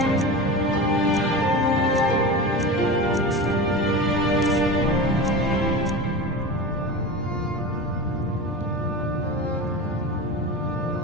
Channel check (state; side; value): normal; both; correlation 0.28